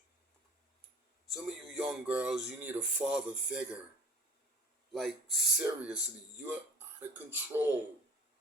Some of you young girls, you need a father figure. Like, seriously, you're out of control.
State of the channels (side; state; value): both; normal; correlation 0.43